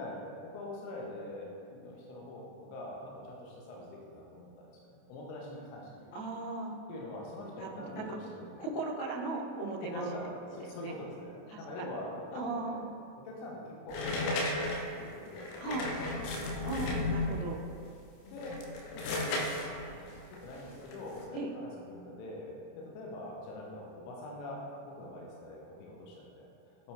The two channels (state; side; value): late; right; 28 ms